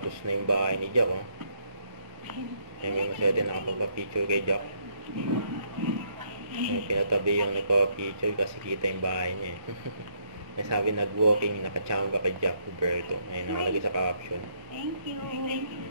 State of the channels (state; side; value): late; left; 1.2 ms